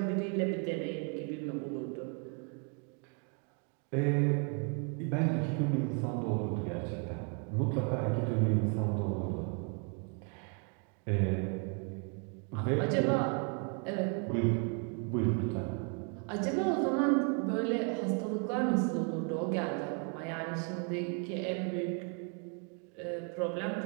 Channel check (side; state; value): left; quieter; 37.5 dB